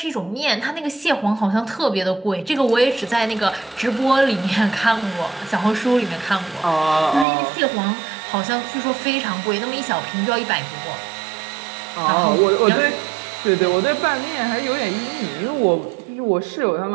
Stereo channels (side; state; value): left; drops out; at 7.2 s